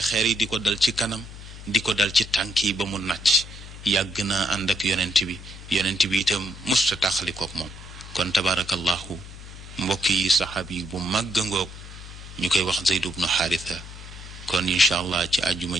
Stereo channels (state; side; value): noise; left; hum, 14 dB below the sound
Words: yi di ko dal ci kanam di ko dal ci tànk yi ba mu nàcc yàgg naa ànd ak yonent bi itam musta taxalikook moom kon tabaarakallahu mbokk yi saxaab yi bu màgg ngoog ñu koy wax Zayd ibnu Xaarisa kon incha allah ci àjjuma